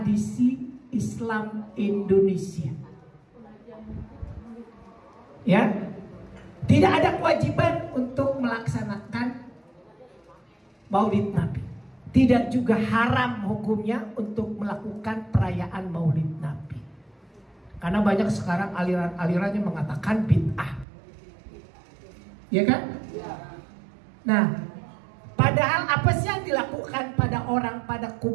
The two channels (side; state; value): left; drops out; at 20.9 s